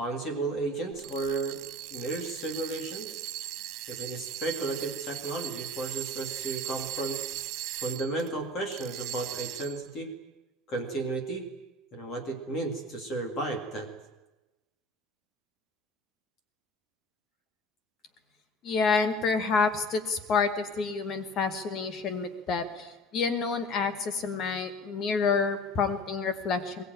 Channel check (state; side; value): normal; both; correlation 0.41